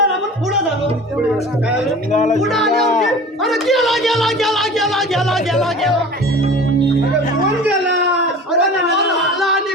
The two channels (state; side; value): normal; both; correlation 0.39